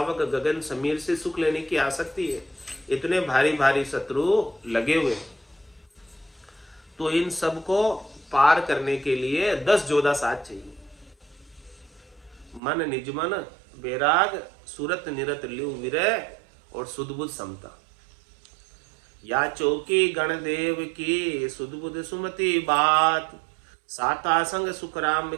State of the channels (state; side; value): drops out; left; at 12.6 s